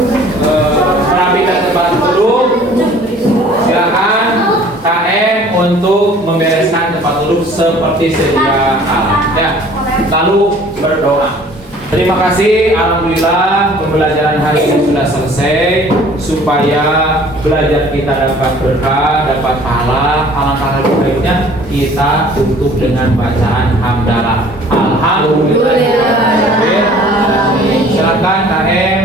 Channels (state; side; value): normal; both; correlation 0.52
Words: merapikan tempat duduk, silakan KM untuk membereskan tempat duduk seperti sedia kala. Ya, lalu berdoa. Terima kasih, alhamdulillah pembelajaran hari ini sudah selesai. Supaya belajar kita dapat berkah, dapat pahala, alangkah lebih baiknya kita tutup dengan bacaan hamdalah. Alhamdulillah. Silakan